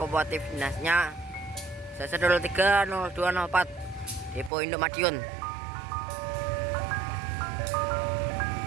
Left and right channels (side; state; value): left; drops out; at 4.5 s